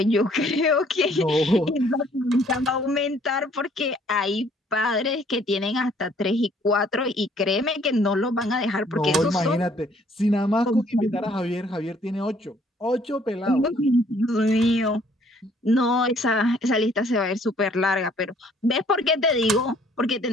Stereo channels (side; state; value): both; normal; correlation 0.61